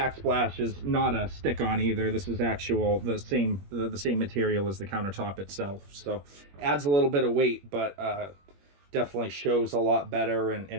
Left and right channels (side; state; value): left; late; 21 ms